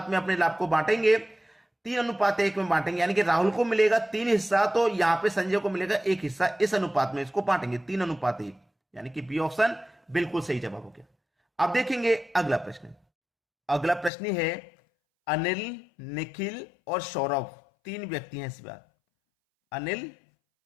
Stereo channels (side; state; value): right; drops out; at 14.1 s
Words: में अपने लाभ को बांटेंगे, 3:1 में बांटेंगे, यानी कि राहुल को मिलेगा 3 हिस्सा, तो यहां पे संजय को मिलेगा 1 हिस्सा। इस अनुपात में इसको बांटेंगे 3:1, यानी कि बी ऑप्शन बिल्कुल सही जवाब हो गया। अब देखेंगे अगला प्रश्न। अगला प्रश्न है, अनिल, निखिल और सौरभ 3 व्यक्ति हैं इस बार। अनिल,